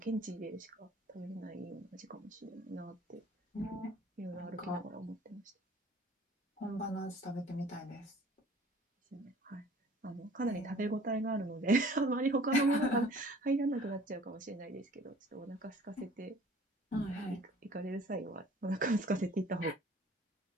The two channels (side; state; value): both; normal; correlation 0.51